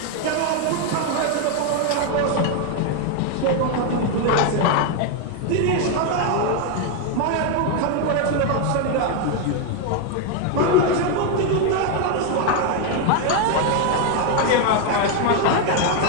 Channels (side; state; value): both; different; correlation 0.01